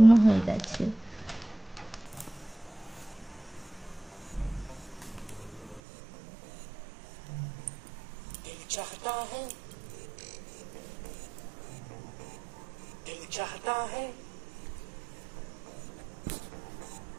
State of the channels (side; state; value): left; drops out; at 5.8 s